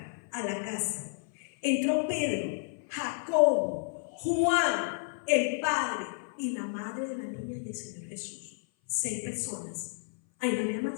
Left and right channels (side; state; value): right; silent; 56 dB below the other